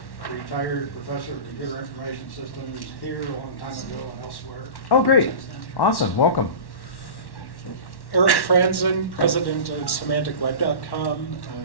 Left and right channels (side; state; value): right; late; 1.1 ms